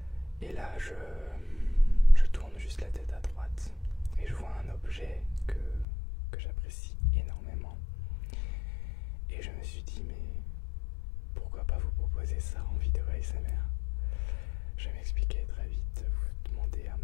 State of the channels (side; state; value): right; drops out; at 5.9 s